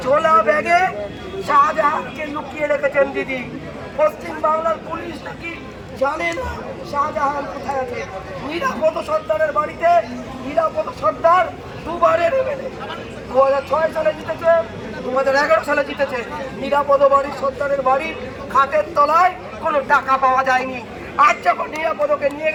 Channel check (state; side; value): identical; both; correlation 1.00